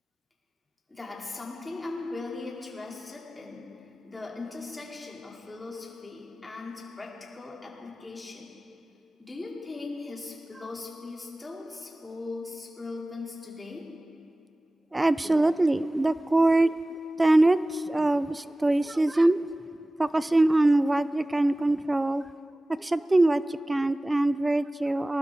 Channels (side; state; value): both; normal; correlation 0.98